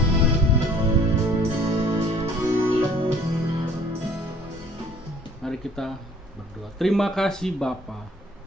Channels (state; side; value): normal; both; correlation 0.54